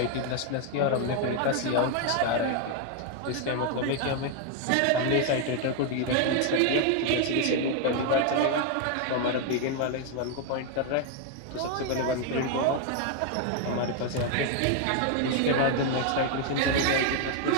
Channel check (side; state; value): both; different; correlation 0.01